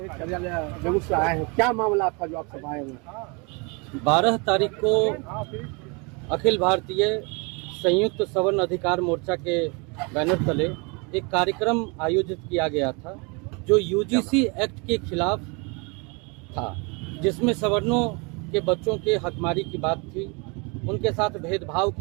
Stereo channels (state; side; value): quieter; left; 30.9 dB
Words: है, क्या मामला आपका जो आप सब आए हुए? 12 तारीख को अखिल भारतीय संयुक्त सवर्ण अधिकार मोर्चा के बैनर तले एक कार्यक्रम आयोजित किया गया था जो यूजीसी एक्ट के खिलाफ था, जिसमें सवर्णों के बच्चों के हकमारी की बात थी, उनके साथ भेदभाव